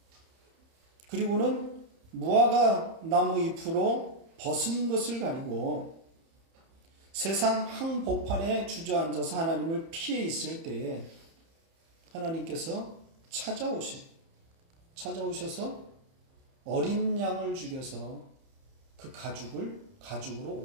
그리고는 무화과 나무 잎으로 벗은 것을 가리고 세상 한복판에 주저앉아서 하나님을 피해 있을 때에 하나님께서 찾아오셔서 어린 양을 죽여서 그 가죽으로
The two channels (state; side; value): late; left; 30 ms